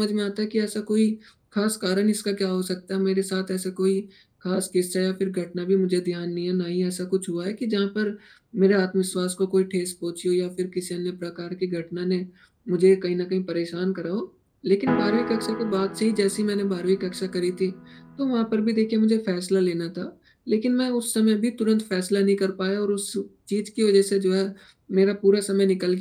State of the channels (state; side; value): identical; both; correlation 1.00